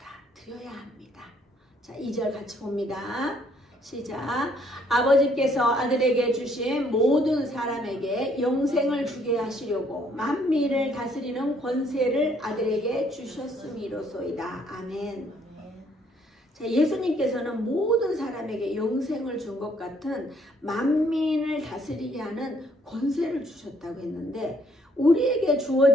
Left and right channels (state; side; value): normal; both; correlation 0.66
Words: 합니다. 자, 2절 같이 봅니다. 시작. 아버지께서 아들에게 주신 모든 사람에게 영생을 주게 하시려고 만민을 다스리는 권세를 아들에게 주셨음이로소이다. 아멘. 자, 예수님께서는 모든 사람에게 영생을 준 것 같은 만민을 다스리게 하는 권세를 주셨다고 했는데 우리에게